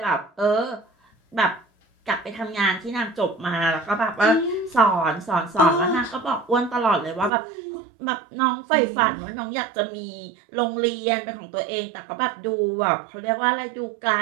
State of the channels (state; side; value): drops out; left; at 7.3 s